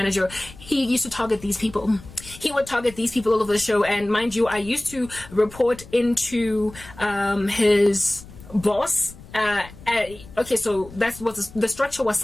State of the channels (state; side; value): noise; left; rumble, 19 dB below the sound